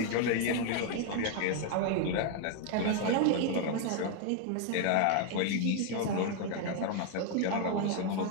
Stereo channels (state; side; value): different; both; correlation 0.00